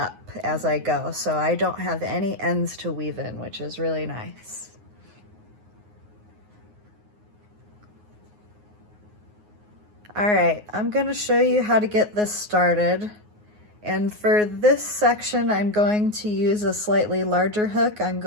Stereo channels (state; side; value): late; left; 9.5 ms